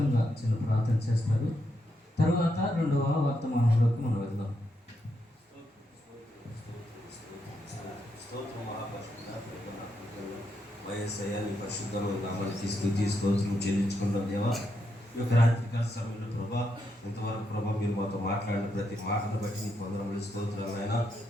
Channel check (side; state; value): both; normal; correlation 0.81